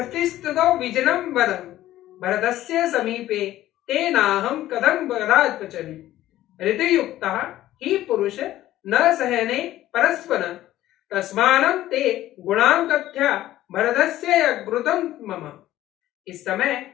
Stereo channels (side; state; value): right; quieter; 14.3 dB